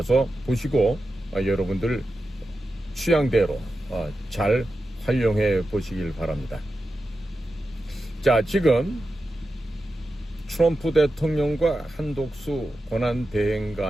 보시고 여러분들 취향대로 잘 활용해 보시길 바랍니다. 자, 지금 트럼프 대통령과 한독수 권한대행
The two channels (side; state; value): both; normal; correlation 0.91